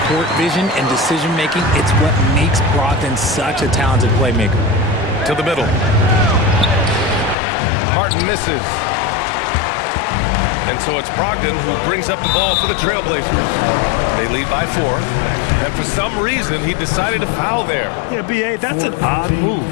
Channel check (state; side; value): drops out; right; at 7.4 s